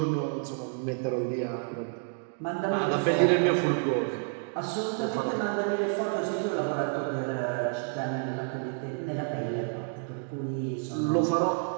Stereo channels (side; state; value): left; silent; 58 dB below the other